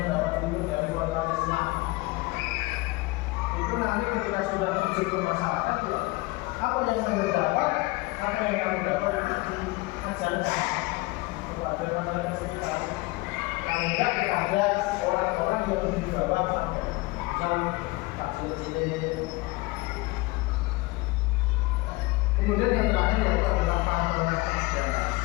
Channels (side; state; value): right; quieter; 22.4 dB